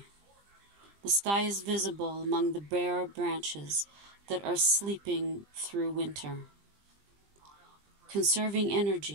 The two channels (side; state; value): left; late; 20 ms